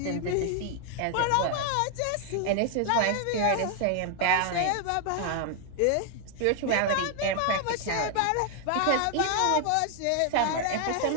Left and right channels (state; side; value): different; both; correlation 0.00